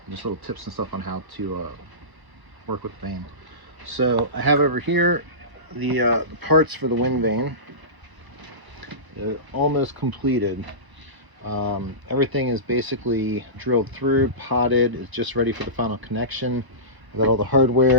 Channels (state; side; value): late; left; 1.0 ms